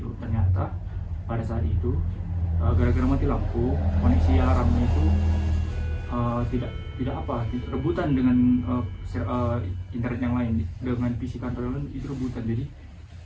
Ternyata pada saat itu gara-gara mati lampu, koneksi alarmnya itu tidak rebutan dengan internet yang lain, dengan PC kantor yang lain itu rebutan. Jadi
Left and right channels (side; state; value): both; identical; correlation 1.00